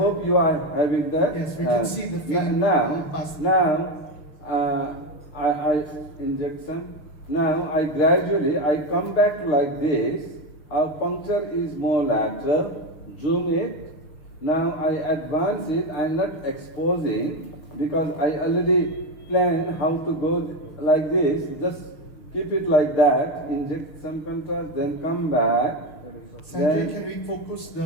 you are having that. Yes, we can see the faint Now, I inject some. Now, I gradually, I come back like this. Our puncture is more lateral. Zoom it. Now, I advance it. I'm not exposing because I already planned how to go like this. Just keep it like that. Inject some contrast, then come back. Sanjay, can we focus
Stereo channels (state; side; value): late; right; 6.5 ms